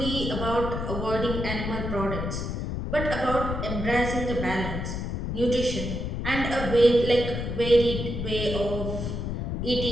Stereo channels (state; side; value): noise; left; rumble, 3 dB below the sound